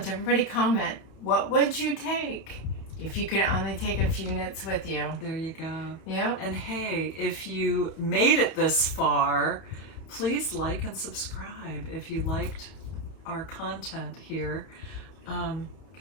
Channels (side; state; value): right; late; 31 ms